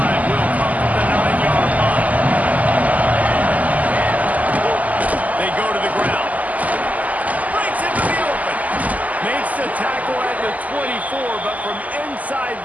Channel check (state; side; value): late; left; 0.076 ms